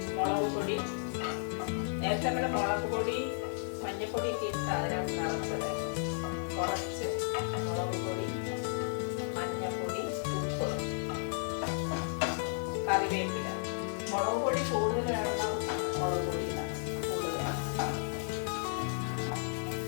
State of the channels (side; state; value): right; silent; digital silence